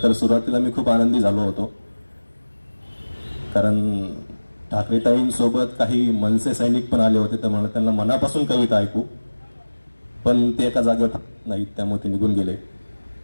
तर सुरुवातीला मी खूप आनंदी झालो होतो, कारण ठाकरेताईंसोबत काही मनसे सैनिक पण आले होते, तर मला त्यांना मनापासून कविता ऐकू, पण ते एका जागेवर नाहीत, त्यामुळे ते निघून गेले.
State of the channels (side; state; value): both; inverted; correlation -1.00